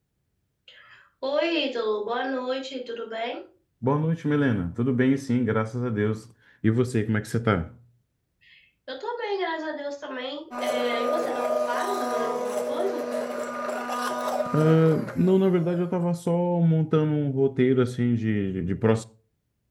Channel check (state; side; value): identical; both; correlation 1.00